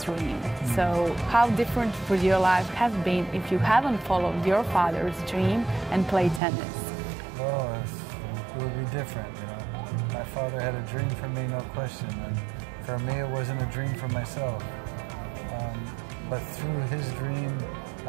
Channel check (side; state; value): left; drops out; at 6.4 s